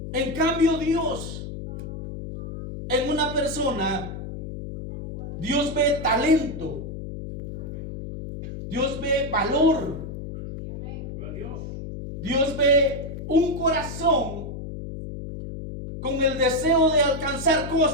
En cambio, Dios, en una persona, Dios ve talento, Dios ve valor, Dios ve un corazón con el deseo de alcanzar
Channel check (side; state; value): left; noise; hum, 8 dB below the sound